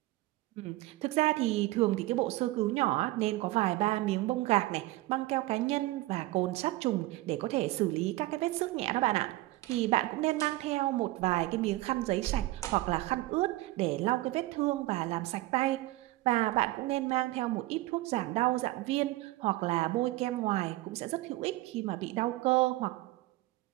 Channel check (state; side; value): quieter; left; 18.7 dB